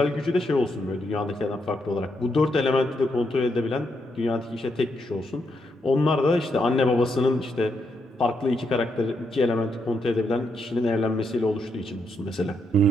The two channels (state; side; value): normal; both; correlation 0.79